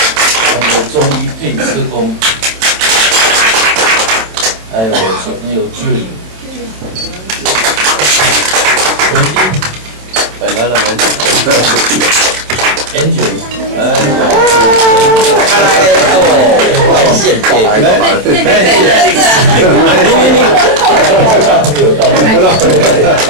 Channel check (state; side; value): late; left; 27 ms